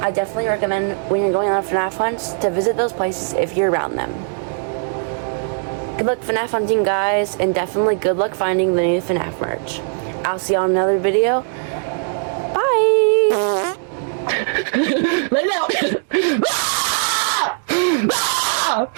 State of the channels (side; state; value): left; silent; digital silence